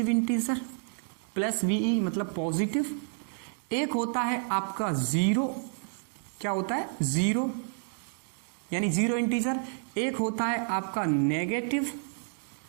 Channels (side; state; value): left; silent; 58 dB below the other